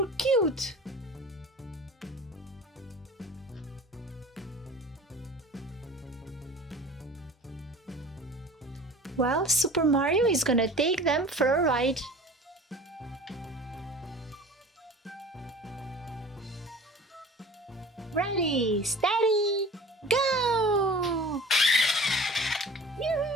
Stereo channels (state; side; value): normal; both; correlation 0.42